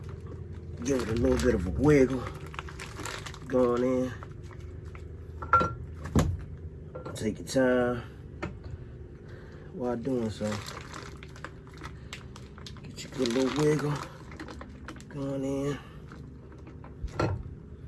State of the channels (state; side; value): identical; both; correlation 1.00